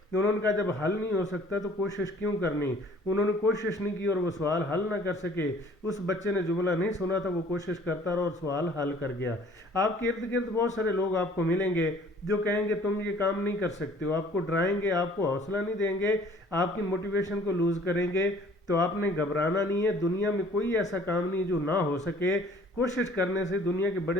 انہوں نے کہا جب حل نہیں ہو سکتا تو کوشش کیوں کرنی. انہوں نے کوشش نہیں کی اور وہ سوال حل نہ کر سکے. اس بچے نے جملہ نہیں سنا تھا, وہ کوشش کرتا رہا اور سوال حل کر گیا. آپ کے ارد گرد بہت سارے لوگ آپ کو ملیں گے جو کہیں گے تم یہ کام نہیں کر سکتے ہو, آپ کو ڈرائیں گے, آپ کو حوصلہ نہیں دیں گے, آپ کی موٹیویشن کو لوز کریں گے. تو آپ نے گھبرانا نہیں ہے. دنیا میں کوئی ایسا کام نہیں جو نہ ہو سکے. کوشش کرنے سے دنیا کے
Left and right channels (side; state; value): both; normal; correlation 0.54